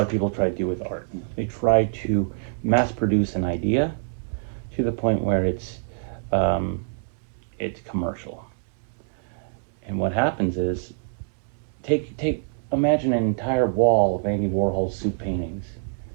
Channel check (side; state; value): left; silent; digital silence